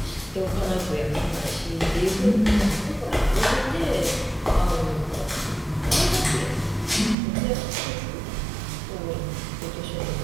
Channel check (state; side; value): drops out; left; at 7.2 s